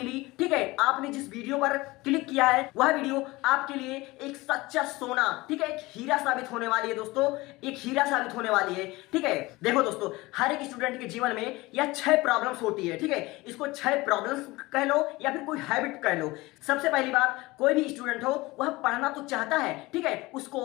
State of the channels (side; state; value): right; quieter; 21.0 dB